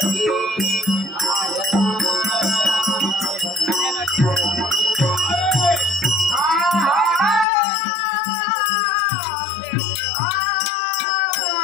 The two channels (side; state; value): right; drops out; at 7.5 s